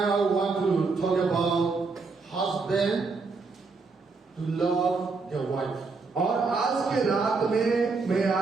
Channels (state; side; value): quieter; left; 4.3 dB